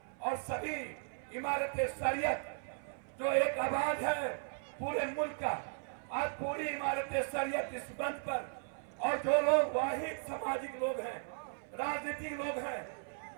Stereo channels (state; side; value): silent; left; 53 dB below the other